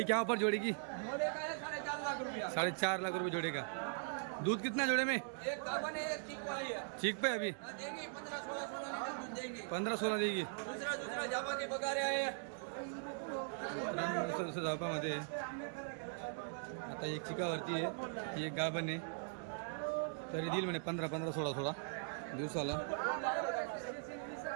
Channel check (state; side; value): silent; left; digital silence